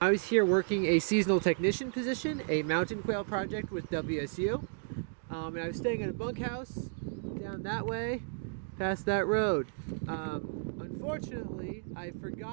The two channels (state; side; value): silent; left; digital silence